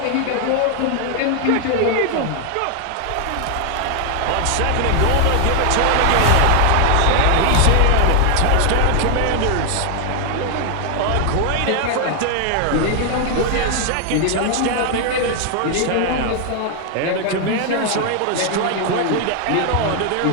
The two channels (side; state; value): both; different; correlation 0.00